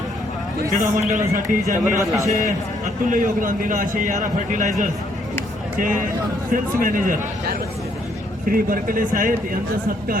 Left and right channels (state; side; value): normal; both; correlation 0.70